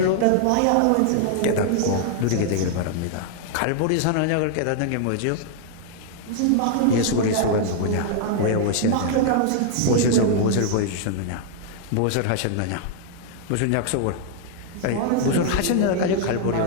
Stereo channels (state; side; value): different; both; correlation -0.01